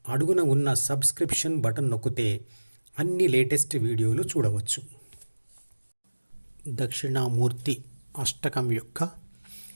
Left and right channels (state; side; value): inverted; both; correlation -1.00